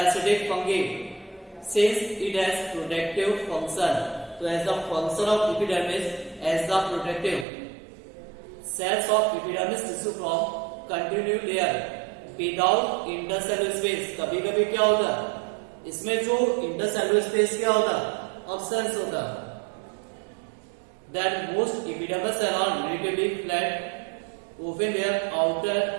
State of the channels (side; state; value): left; drops out; at 7.5 s